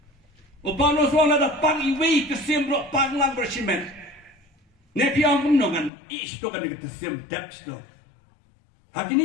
Upano suang ada pang iwi kesim rok pang lang bersimen. Nepi ang menongan, ish to kan kesim depth to.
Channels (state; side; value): drops out; right; at 5.9 s